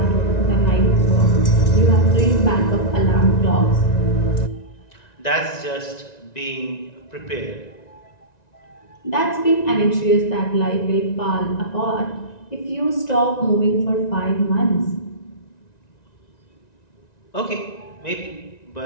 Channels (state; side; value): late; right; 1.9 ms